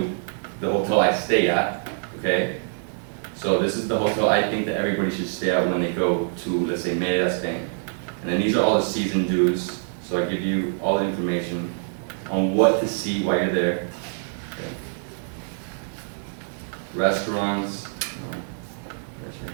the hotel I stay at, okay? So this is the hotel I think that everybody should stay at when they go to, let's say, Mérida, Spain. And then these are all the season dues, so I give you all the information on what to see while you're there. Okay. Restaurants.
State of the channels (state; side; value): silent; left; 62 dB below the other